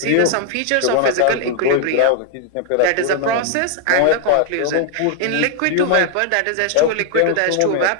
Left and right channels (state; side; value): different; both; correlation 0.00